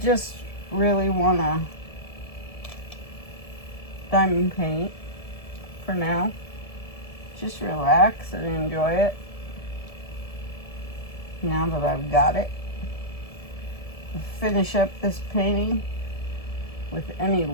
really want to diamond paint for now. Just relax and enjoy it. Now that I've got it, I'll finish up this painting with any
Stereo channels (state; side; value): late; right; 1.7 ms